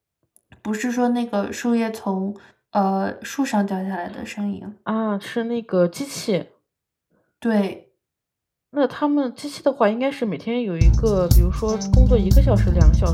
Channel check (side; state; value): both; identical; correlation 1.00